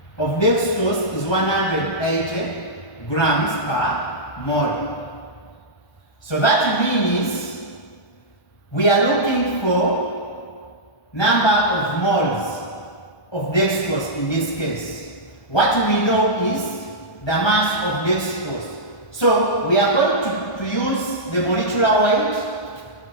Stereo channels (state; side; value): late; right; 1.2 ms